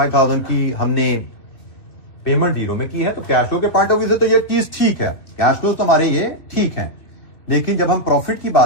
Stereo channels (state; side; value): late; right; 2.5 ms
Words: की हमने पेमेंट 0 में की है, तो कैश फ्लो के पॉइंट ऑफ व्यू से तो ये चीज ठीक है, कैश फ्लो तो हमारे ये ठीक है। लेकिन जब हम प्रॉफिट की